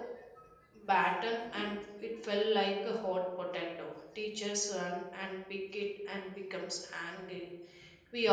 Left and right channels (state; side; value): identical; both; correlation 1.00